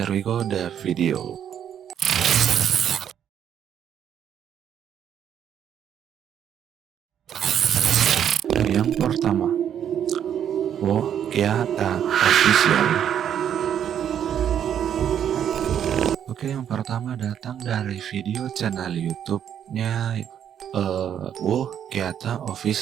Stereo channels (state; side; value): quieter; left; 9.3 dB